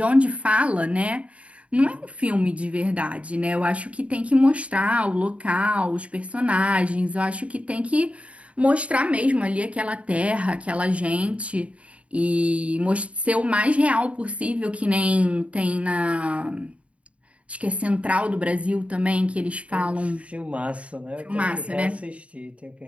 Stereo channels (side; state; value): left; late; 0.064 ms